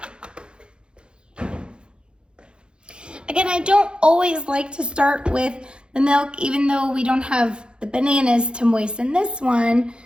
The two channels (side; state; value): left; late; 0.053 ms